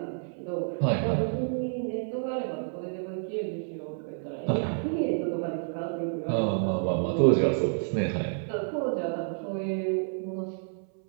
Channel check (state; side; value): silent; left; 58 dB below the other